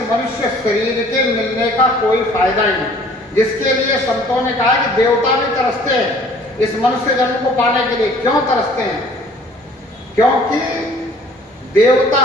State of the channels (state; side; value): normal; both; correlation 0.54